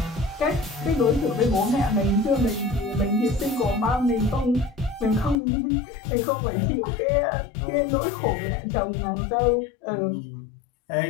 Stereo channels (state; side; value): drops out; right; at 5.4 s